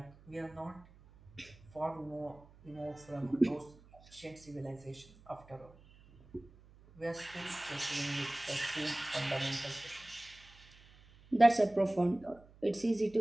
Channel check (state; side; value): noise; right; hum, 24 dB below the sound